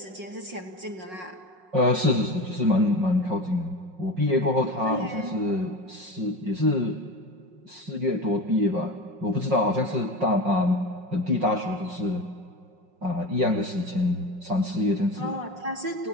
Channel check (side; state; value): left; late; 5.5 ms